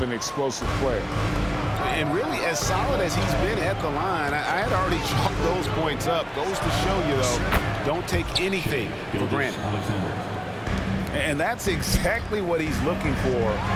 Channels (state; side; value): identical; both; correlation 1.00